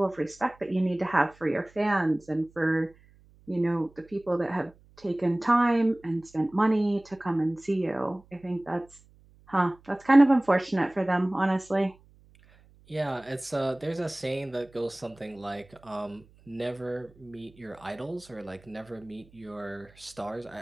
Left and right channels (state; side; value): noise; right; hum, 28 dB below the sound